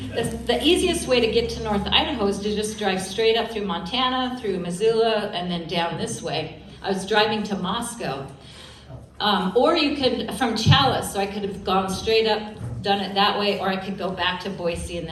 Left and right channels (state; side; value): identical; both; correlation 1.00